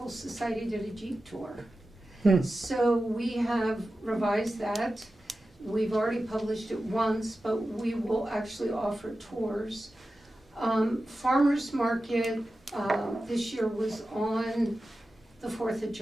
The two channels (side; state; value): both; normal; correlation 0.93